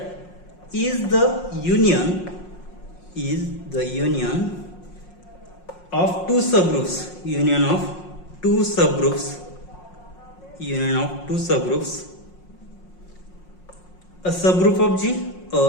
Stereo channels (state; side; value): late; right; 5.5 ms